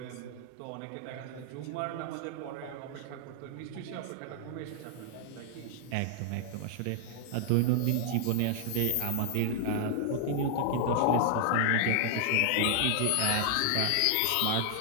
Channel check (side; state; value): both; different; correlation -0.01